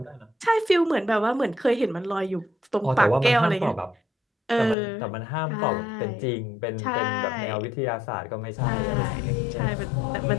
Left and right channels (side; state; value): right; drops out; at 4.8 s